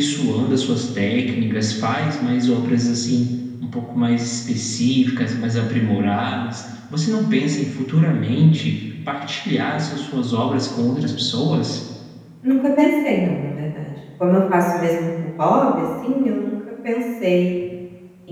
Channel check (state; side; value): identical; both; correlation 1.00